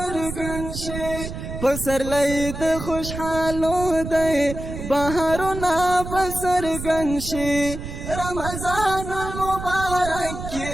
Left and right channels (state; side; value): noise; right; rumble, 8 dB below the sound